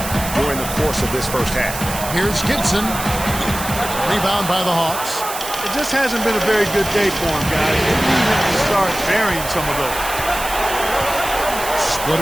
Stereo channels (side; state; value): right; noise; hiss, 8 dB below the sound